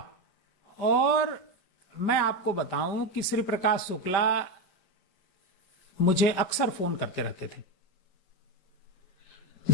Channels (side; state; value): right; late; 5.3 ms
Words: और मैं आपको बताऊं कि श्री प्रकाश शुक्ला मुझे अक्सर फोन करते रहते थे।